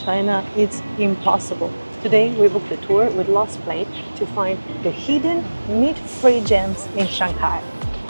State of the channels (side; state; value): both; inverted; correlation -1.00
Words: it's impossible. Today we booked a tour with Lost Plate to find the hidden meat-free gems in Shanghai.